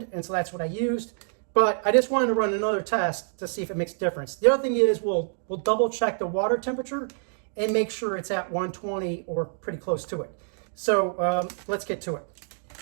and so that's what I used. But I just wanted to run another test to see if it makes a difference. The other thing is we'll double check the water temperature and make sure it's at 120 or pretty close to it. So let's get to it.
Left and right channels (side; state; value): left; silent; digital silence